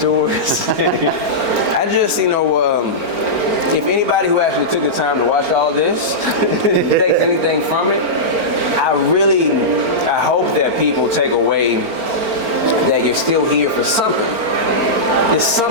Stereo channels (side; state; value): left; late; 4.4 ms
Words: I just, if anybody who actually took the time to watch all this takes anything from it, I hope that people take away that you're still here for something. It's